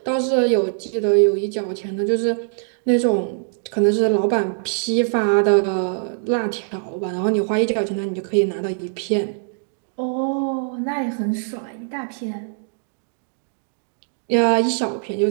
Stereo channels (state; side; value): silent; left; digital silence